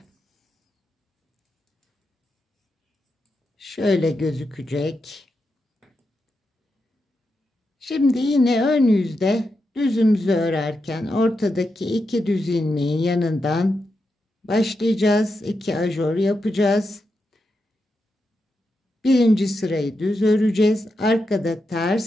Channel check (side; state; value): both; normal; correlation 0.87